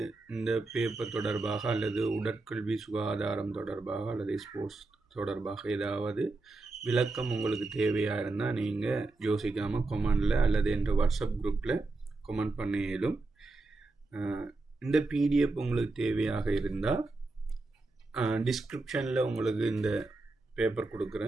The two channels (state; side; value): quieter; left; 3.3 dB